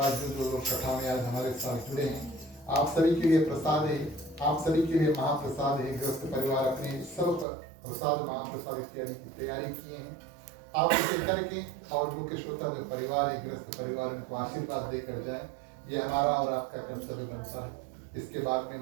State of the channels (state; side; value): drops out; left; at 7.5 s